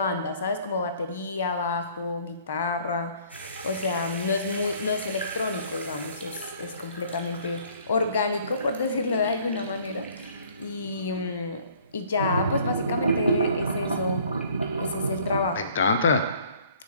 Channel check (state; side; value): inverted; both; correlation -0.57